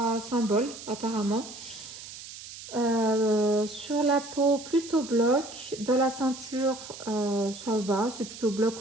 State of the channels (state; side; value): noise; right; hiss, 13 dB below the sound